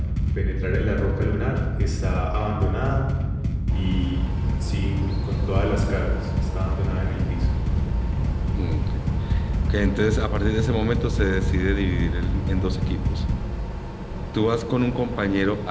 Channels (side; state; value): both; identical; correlation 1.00